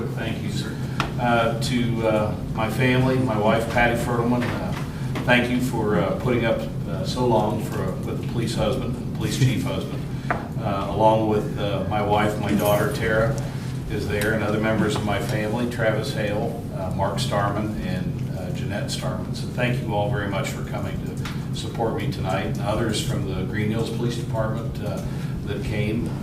thank yous to my family, my wife Patty Fertelman. Thank you for putting up so long with the police husband, police chief husband, along with my wife, my daughter Tara is there, and other members of my family, Travis Hale, Mark Starman, and Jeanette Starman. So thank you all very much for coming to support me tonight, and others from the Greenhills Police Department that came,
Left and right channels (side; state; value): both; identical; correlation 1.00